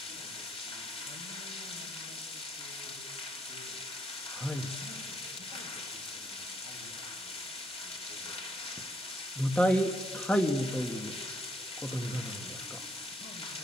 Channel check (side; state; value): both; normal; correlation 0.73